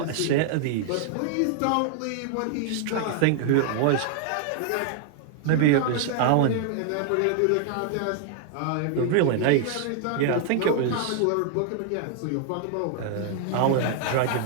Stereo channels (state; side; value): different; both; correlation -0.01